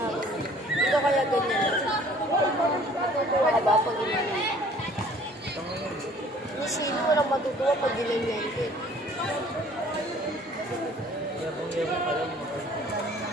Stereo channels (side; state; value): both; normal; correlation 0.53